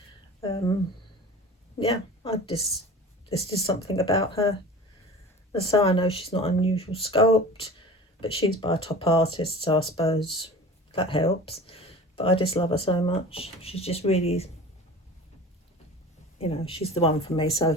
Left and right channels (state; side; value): normal; both; correlation 0.38